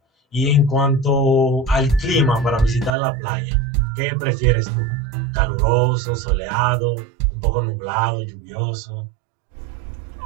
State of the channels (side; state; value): left; drops out; at 3.0 s